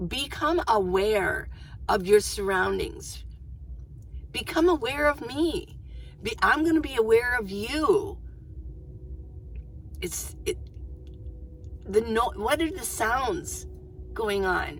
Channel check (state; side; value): identical; both; correlation 1.00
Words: become aware of your surroundings. Become aware of me. I'm going to be aware of you. What are the sounds going